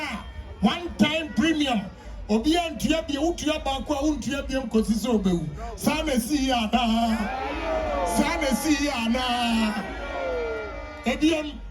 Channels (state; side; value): identical; both; correlation 1.00